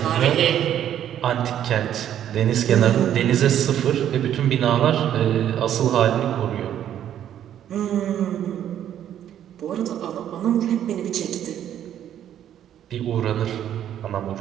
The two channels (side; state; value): left; quieter; 10.6 dB